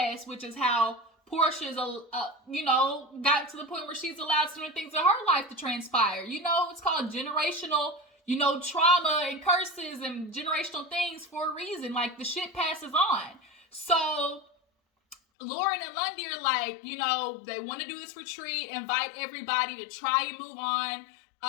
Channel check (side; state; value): right; drops out; at 15.2 s